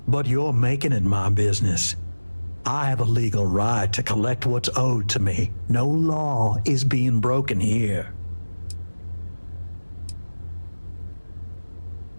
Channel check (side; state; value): both; inverted; correlation -1.00